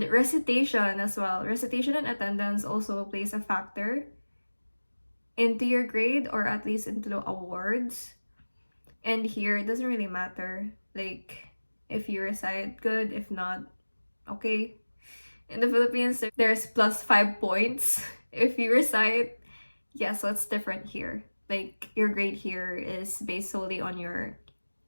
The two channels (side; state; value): both; inverted; correlation -1.00